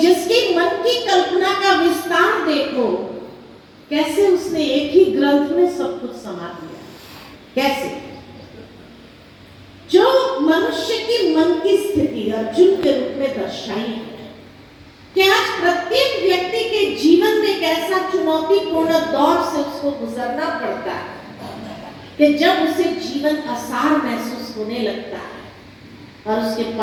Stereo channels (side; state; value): both; identical; correlation 1.00